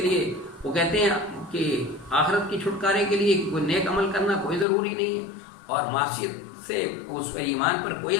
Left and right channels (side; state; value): right; drops out; at 4.7 s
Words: لیے وہ کہتے ہیں کہ آخرت کی چھٹکارے کے لیے کوئی نیک عمل کرنا کوئی ضروری نہیں ہے، اور معصیت سے اس پر ایمان پر کوئی